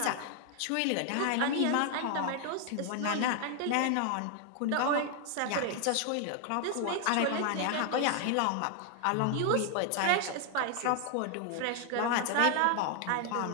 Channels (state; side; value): different; both; correlation 0.00